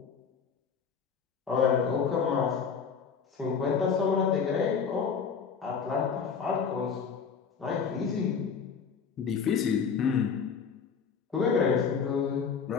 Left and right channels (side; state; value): right; quieter; 6.2 dB